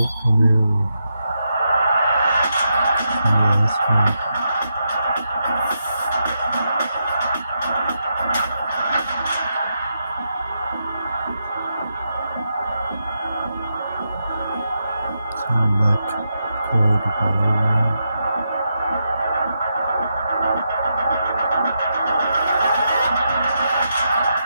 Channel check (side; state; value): both; inverted; correlation -0.84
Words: premiere last month. Select code Valorant.